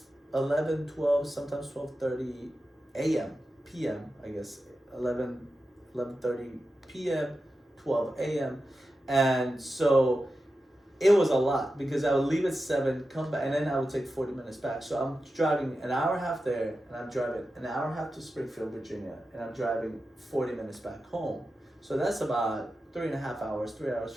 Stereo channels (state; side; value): normal; both; correlation 0.91